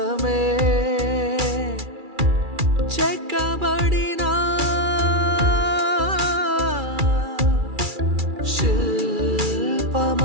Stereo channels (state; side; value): late; left; 2.3 ms